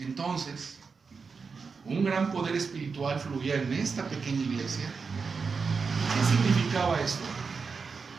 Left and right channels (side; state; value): left; quieter; 5.1 dB